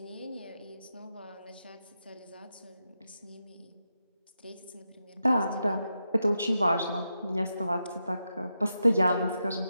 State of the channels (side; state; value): both; inverted; correlation -0.87